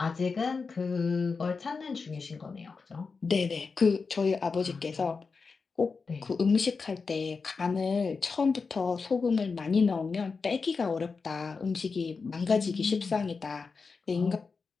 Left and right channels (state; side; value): quieter; right; 4.8 dB